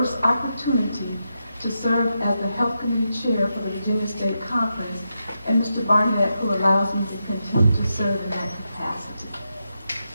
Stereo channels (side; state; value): both; inverted; correlation -0.86